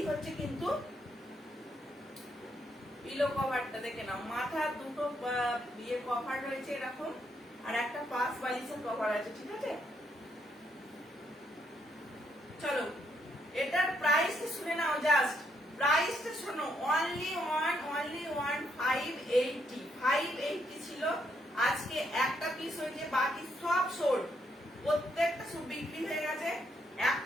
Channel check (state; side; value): normal; both; correlation 0.75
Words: হচ্ছে কিন্তু পিলো কভারটা, দেখে নাও, মাথা দুটো ইয়ে কভার রয়েছে এরকম, আর একটা পাঁচ বালিশের কভার আছে, ঠিক আছে। চলো এটার প্রাইস শুনে নাও, জাস্ট প্রাইসটা শোনো, অনলি ওয়ান 580 ছিল। আজকে একটা পিস হয়েছে, বাকি সব সোল্ড, প্রত্যেকটা সব বিক্রি হয়ে গেছে,